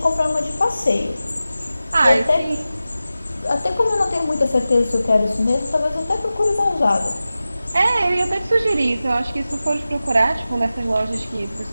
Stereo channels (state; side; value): inverted; both; correlation -0.95